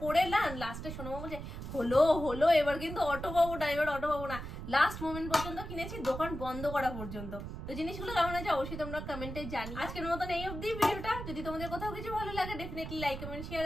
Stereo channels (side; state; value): right; noise; rumble, 8 dB below the sound